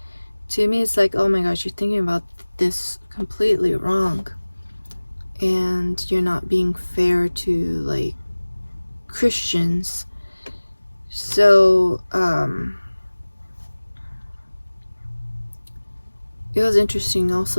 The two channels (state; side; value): inverted; both; correlation -1.00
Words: to me it's like, oh my gosh, you're thinking about this completely wrong, and you're not being fair to like Christians. So it was interesting